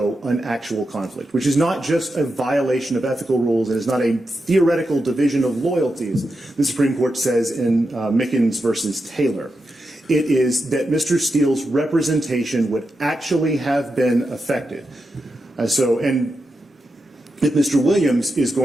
an actual conflict, which is not just a violation of ethical rules. It is not a theoretical division of loyalties, the Supreme Court says in Mickens versus Taylor. It is that Mr. Steele's representation would actually have been affected. And if Mr. Williams is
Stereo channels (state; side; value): normal; both; correlation 0.88